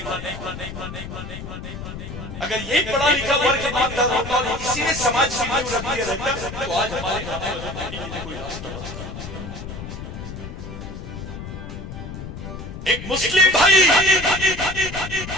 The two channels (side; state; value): left; noise; rumble, 9 dB below the sound